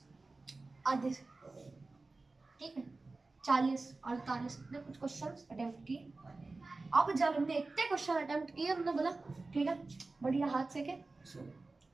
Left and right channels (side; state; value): left; quieter; 3.5 dB